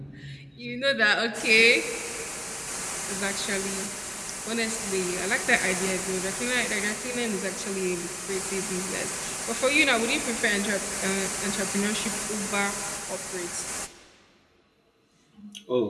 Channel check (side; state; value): both; identical; correlation 1.00